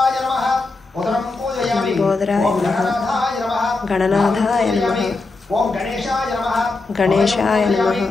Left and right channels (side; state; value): right; quieter; 3.6 dB